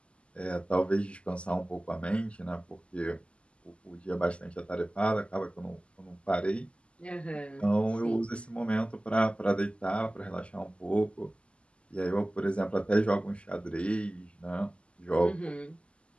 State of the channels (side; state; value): right; late; 0.055 ms